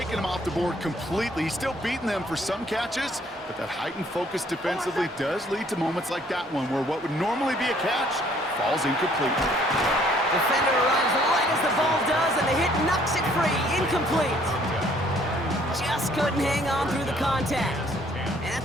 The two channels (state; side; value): normal; both; correlation 0.61